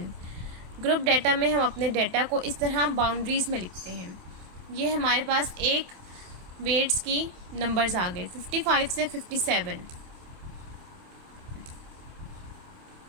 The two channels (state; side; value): late; left; 27 ms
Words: ग्रुप डाटा में हम अपने डाटा को इस तरह बाउंड्रीज़ में लिखते हैं। ये हमारे पास एक वेट्स की नंबर्स आ गए 55 से 57।